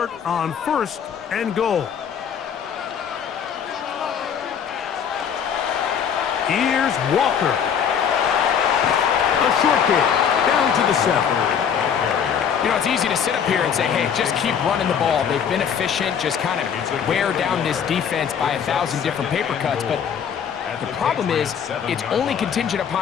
on first and goal. Here's Walker. A short kick down to the 7. You know, it's easy to sit up here and say, hey, just keep running the ball. They've been efficient, just kind of wear down this defense by 1,000 different paper cuts. But the problem is it's only contingent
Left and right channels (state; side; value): quieter; right; 7.7 dB